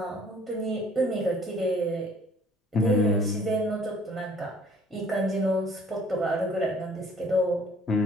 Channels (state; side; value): normal; both; correlation 0.56